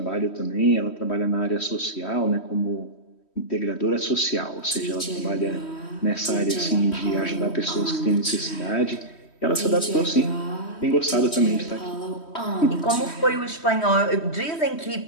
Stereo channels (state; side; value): late; right; 3.1 ms